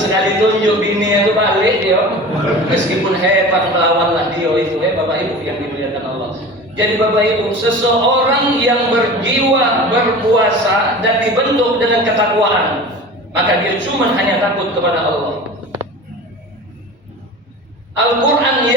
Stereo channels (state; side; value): normal; both; correlation 0.36